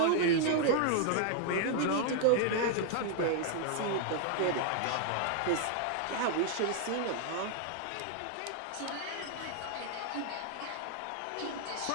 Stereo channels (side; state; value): both; different; correlation 0.00